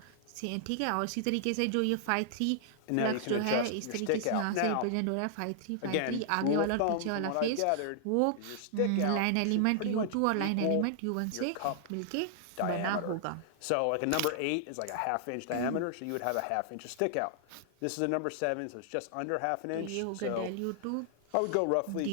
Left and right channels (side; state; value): both; different; correlation -0.01